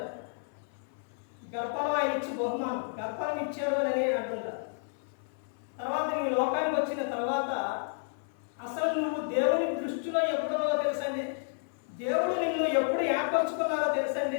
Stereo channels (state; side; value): silent; right; 57 dB below the other